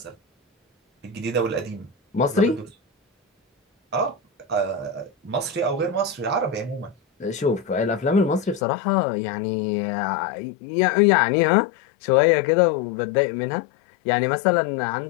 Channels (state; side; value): drops out; right; at 8.6 s